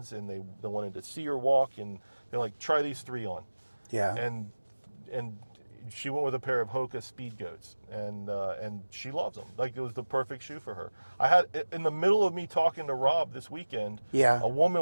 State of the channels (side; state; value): both; inverted; correlation -1.00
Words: and they wanted to see her walk, and they're like, try these 3 on. Yeah. And she went with a pair of Hoka Speed Goats, and she loves them. Like, it was the perfect shoe for her. I had, in the middle of me talking to Rob this weekend, Yeah. a